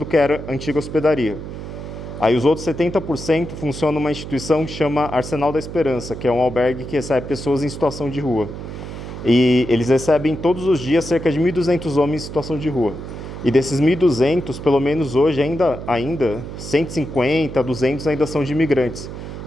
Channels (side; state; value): right; noise; hum, 10 dB below the sound